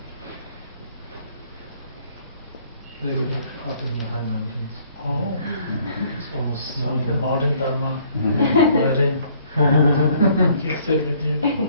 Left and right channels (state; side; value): inverted; both; correlation -0.61